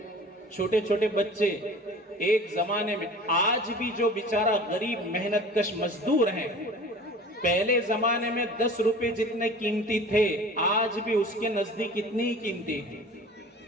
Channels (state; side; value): normal; both; correlation 0.42